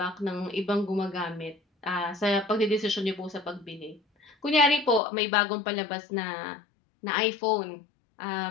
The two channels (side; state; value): right; drops out; at 5.0 s